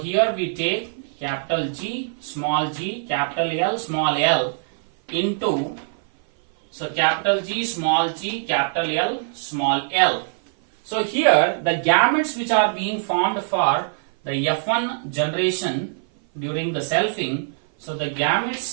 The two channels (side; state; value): left; silent; 57 dB below the other